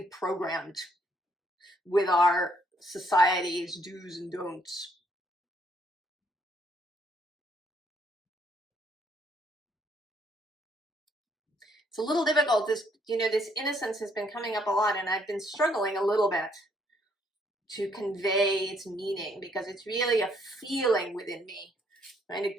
programmed with our society's do's and don'ts. It's a little difficult. This, you know, this innocence has been coming up a lot, and I've been struggling a little bit to convey its meaning because it's really a feeling within me, and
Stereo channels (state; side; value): normal; both; correlation 0.68